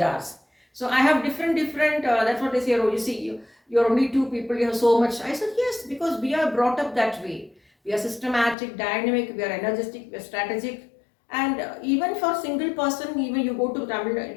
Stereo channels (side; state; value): right; drops out; at 8.6 s